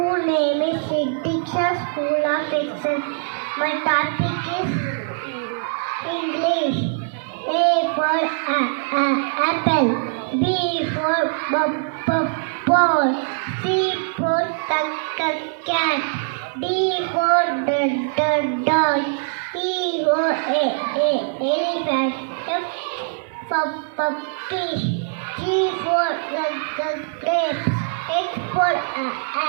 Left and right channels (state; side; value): silent; left; 62 dB below the other